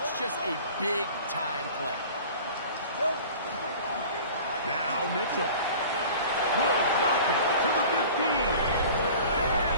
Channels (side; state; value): both; inverted; correlation -0.42